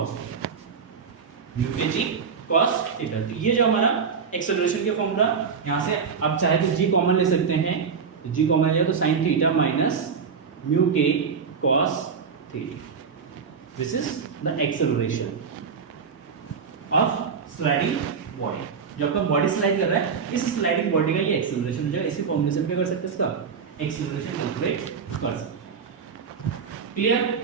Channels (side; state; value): left; quieter; 6.0 dB